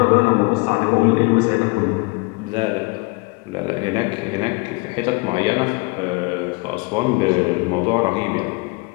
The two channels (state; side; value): quieter; right; 28.7 dB